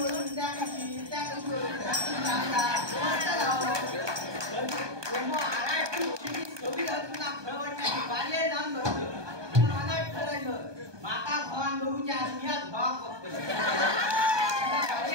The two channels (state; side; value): late; left; 1.2 ms